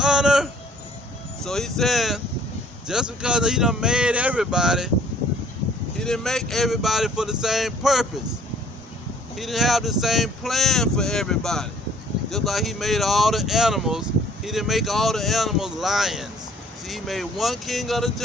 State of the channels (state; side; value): normal; both; correlation 0.57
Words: So he's saying, just because he done made everybody, he didn't make everybody for the same purpose. He didn't have the same plan for everybody. Just like he made all the animals, he didn't make all the animals lions. See, he made one king of the